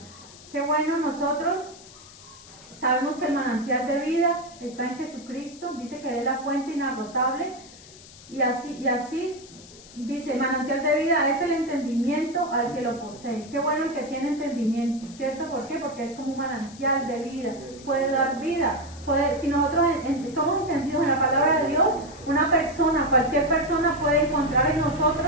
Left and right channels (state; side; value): noise; left; hiss, 20 dB below the sound